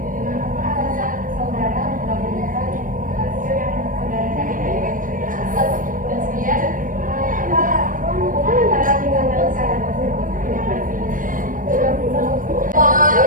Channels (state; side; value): late; left; 0.39 ms